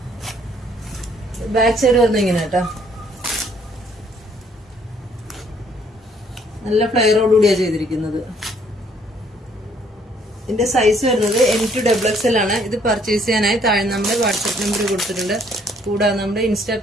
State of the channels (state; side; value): normal; both; correlation 0.64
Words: ബാക്ക് സൈഡ് വരുന്നത് ഇങ്ങനെ കേട്ടോ. നല്ല ഫ്ലെയറോടുകൂടിയാണ് ചെയ്തിരിക്കുന്നത്. ഇതിന്റെ സൈസ് വരുന്നത് M2XXL ആണ്. ഇത് പർച്ചേസ് ചെയ്യാനായി താഴെ നമ്മുടെ വാട്സ്ആപ്പ് നമ്പർ കൊടുത്തിട്ടുണ്ട്. കൂടാതെ നമ്മുടെ ഇൻസ്റ്റാ